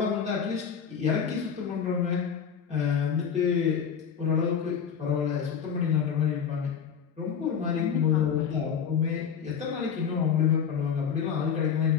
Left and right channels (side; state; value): right; quieter; 7.3 dB